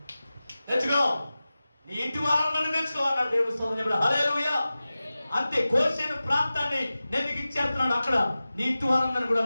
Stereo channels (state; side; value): inverted; both; correlation -0.96